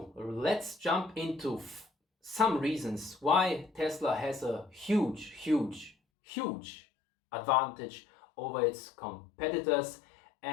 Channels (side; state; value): right; drops out; at 6.0 s